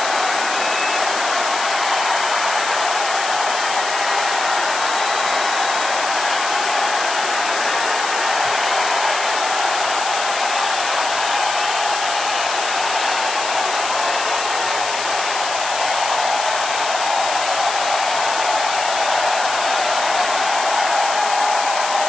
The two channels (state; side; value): noise; left; hiss, 6 dB below the sound